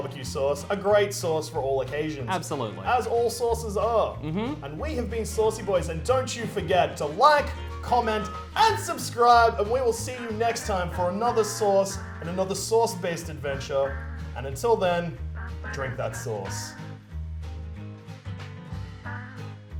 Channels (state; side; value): identical; both; correlation 1.00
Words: Sauce, a great sauce for all occasions. Absolutely. As all sauces are. And we have been Saucy Boys, and don't you forget to like, comment, and subscribe, and we will see you next time for another sauce and another sauce-based adventure. And until then, drink that sauce.